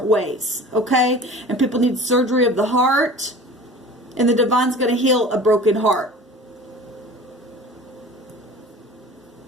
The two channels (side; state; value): both; normal; correlation 0.40